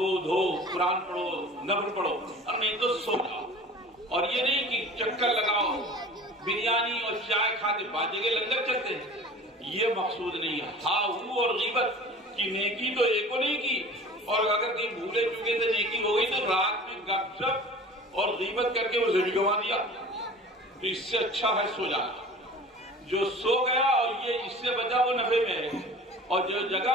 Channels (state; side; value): normal; both; correlation 0.41